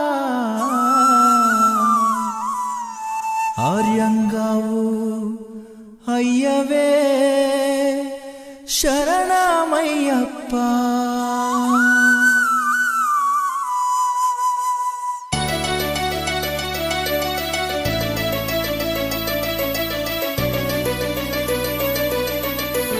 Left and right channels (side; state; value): both; identical; correlation 1.00